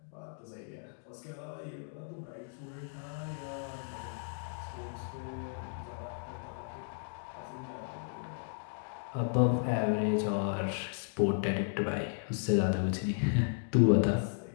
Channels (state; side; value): silent; right; digital silence